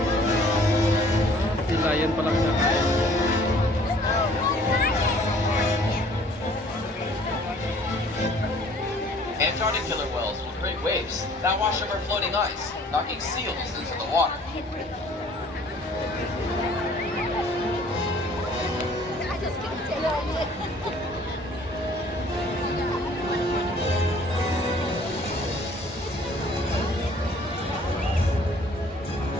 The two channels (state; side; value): normal; both; correlation 0.55